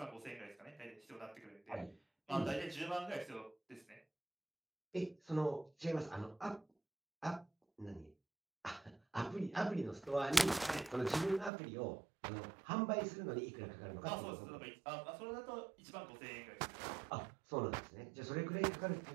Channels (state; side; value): drops out; left; at 11.5 s